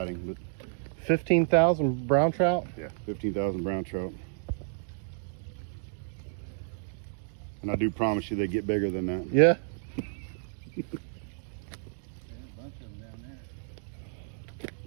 but 15,000 brown trout? yeah, 15,000 brown trout. And I do promise you they get bigger than that. Yeah. Yeah, a bunch of them down there.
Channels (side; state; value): left; silent; digital silence